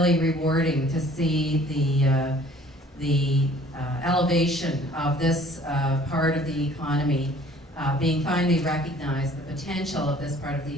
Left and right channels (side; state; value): both; normal; correlation 0.53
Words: rewarding to see the elevation of this part of the economy being finally recognized, the potential of this part of